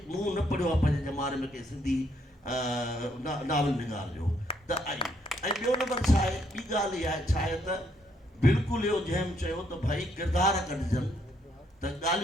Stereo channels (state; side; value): normal; both; correlation 0.71